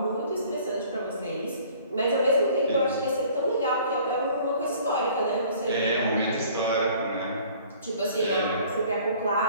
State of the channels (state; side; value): inverted; both; correlation -0.53